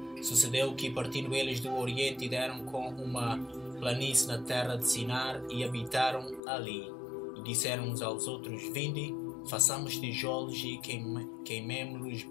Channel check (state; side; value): drops out; right; at 6.4 s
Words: Sucedeu que, partindo eles do Oriente, deram com uma planície na terra de Sinar e habitaram ali. E disseram uns aos outros: Vinde, façamos tijolos e queimemo-los